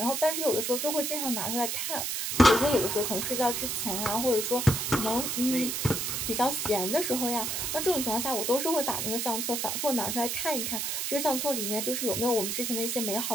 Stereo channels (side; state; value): right; noise; hiss, 1 dB below the sound